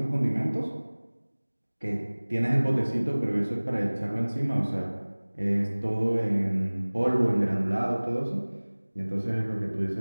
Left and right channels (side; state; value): both; inverted; correlation -1.00